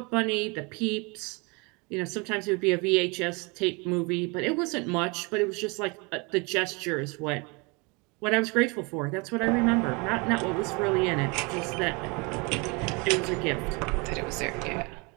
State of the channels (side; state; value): left; quieter; 29.2 dB